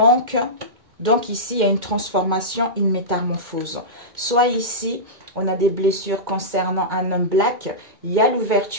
donc ici, il y a une transformation, une métamorphose. Soit ici, on a des blessures concernant un homme black. Il y a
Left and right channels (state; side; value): late; left; 2.1 ms